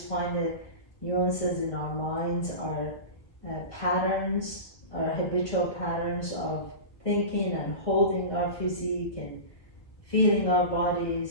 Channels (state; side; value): late; right; 1.7 ms